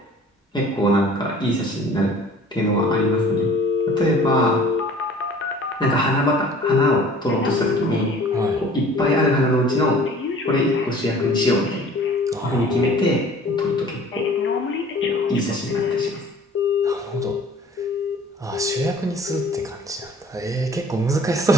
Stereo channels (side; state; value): both; normal; correlation 0.49